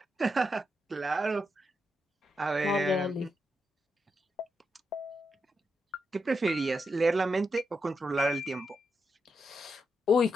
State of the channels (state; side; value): normal; both; correlation 0.84